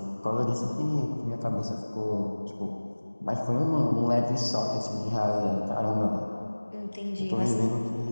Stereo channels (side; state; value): both; inverted; correlation -1.00